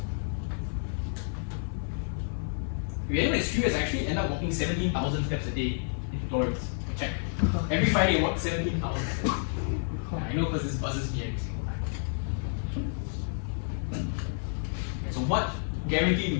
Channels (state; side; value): silent; right; digital silence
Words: If anyone is curious, I actually end up walking 17,000 steps a day in tutorials. Check. Every Friday I walk 17,000. I know because this buzzes me every single time. So what guarantee do